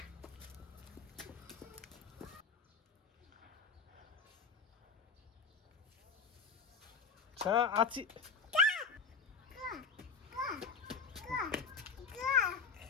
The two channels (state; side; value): quieter; right; 4.9 dB